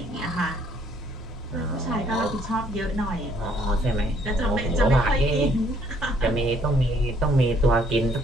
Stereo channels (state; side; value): normal; both; correlation 0.65